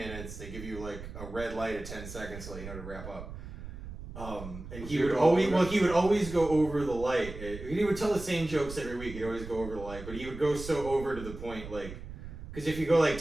They give you like a red light at 10 seconds to let you know to wrap up. And he would always go over the light. He would tell the same jokes every week. He'd always go over the light, but he would go so over to the point, like, because if you go like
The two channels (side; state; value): right; noise; rumble, 11 dB below the sound